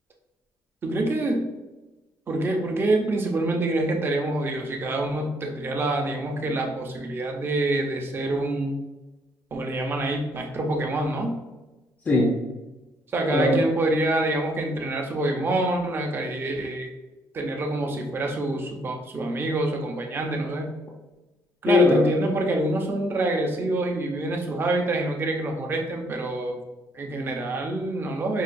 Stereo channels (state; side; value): normal; both; correlation 0.69